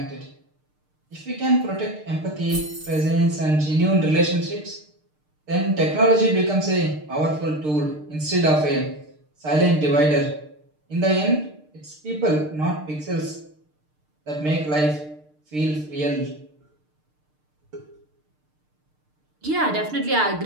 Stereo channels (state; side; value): late; left; 6.6 ms